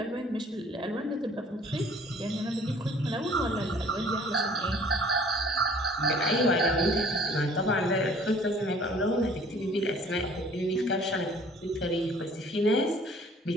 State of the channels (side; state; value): both; normal; correlation 0.53